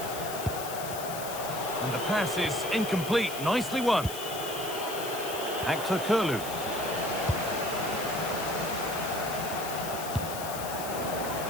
And the pass is incomplete. Nicely won. Actor Kurlu.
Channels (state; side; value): noise; left; hiss, 9 dB below the sound